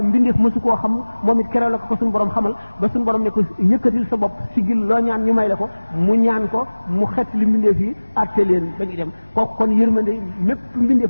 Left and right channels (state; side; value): inverted; both; correlation -1.00